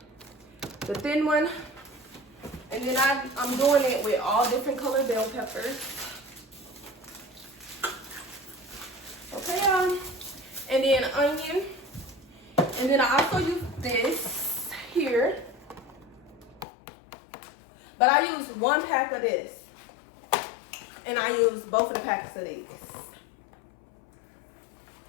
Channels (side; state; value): right; drops out; at 16.7 s